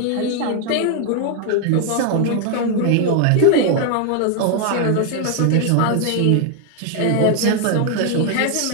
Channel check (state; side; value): different; both; correlation 0.00